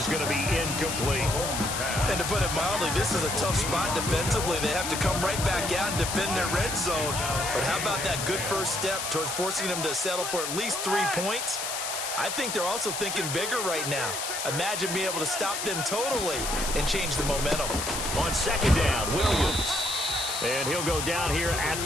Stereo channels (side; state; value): left; noise; hiss, 3 dB below the sound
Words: going to be incomplete. And to put it mildly, this is a tough spot defensively. They have to come right back out and defend their red zone. But how about that good first step towards forcing them to settle for at least 3 points? I think they're also thinking bigger right now. Imagine being able to stop them totally and change the momentum. On 2nd down, Williams. And he'll go down here at